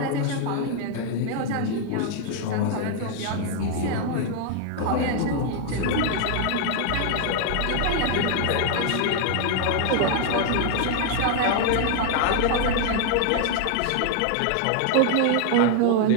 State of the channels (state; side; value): different; both; correlation 0.00